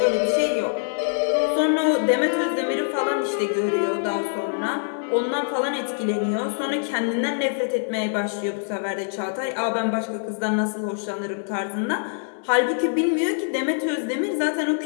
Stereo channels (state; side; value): silent; right; 63 dB below the other